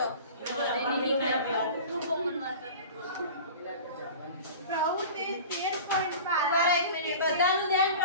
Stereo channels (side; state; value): both; inverted; correlation -0.38